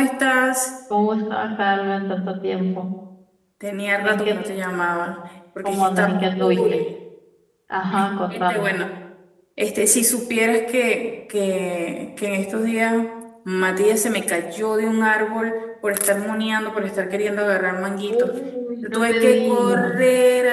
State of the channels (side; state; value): both; identical; correlation 1.00